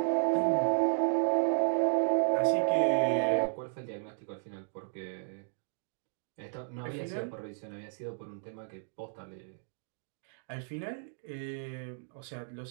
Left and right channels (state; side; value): silent; left; digital silence